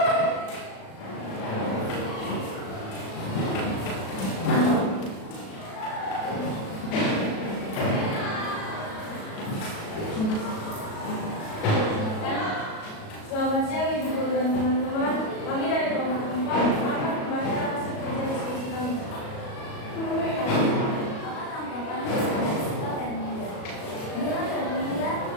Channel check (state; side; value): late; right; 37 ms